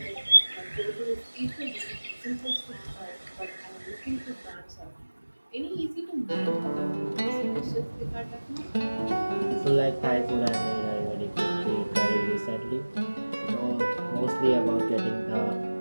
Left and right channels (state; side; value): inverted; both; correlation -1.00